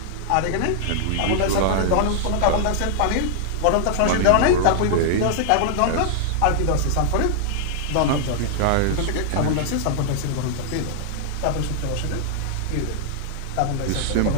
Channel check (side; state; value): both; different; correlation -0.01